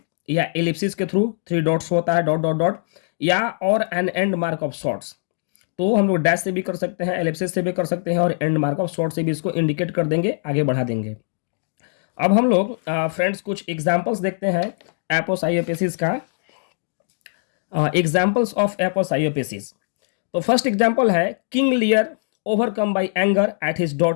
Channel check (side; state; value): right; silent; digital silence